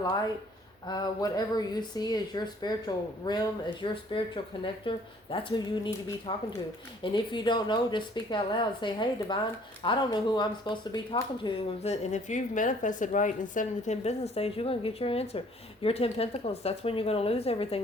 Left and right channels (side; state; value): both; normal; correlation 0.58